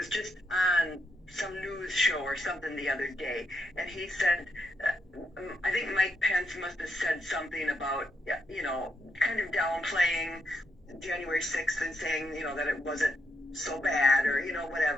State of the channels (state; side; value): normal; both; correlation 0.81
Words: just on some news show or something the other day, and he said, I think Mike Pence must have said something about, kind of downplaying January 6th and saying, that it wasn't so bad or,